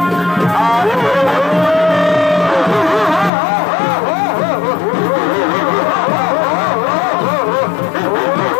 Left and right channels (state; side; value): drops out; right; at 3.3 s